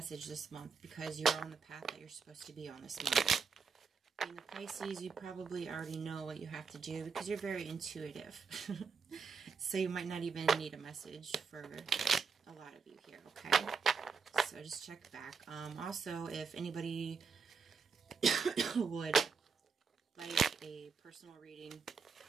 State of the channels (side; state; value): left; quieter; 5.4 dB